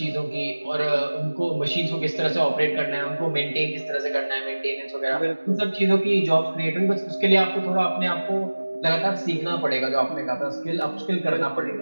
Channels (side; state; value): both; inverted; correlation -1.00